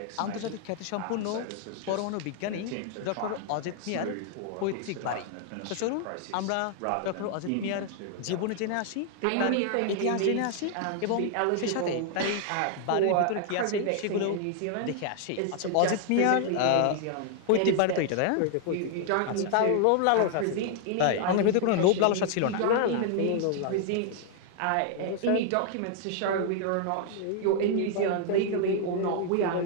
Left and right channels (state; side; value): different; both; correlation 0.00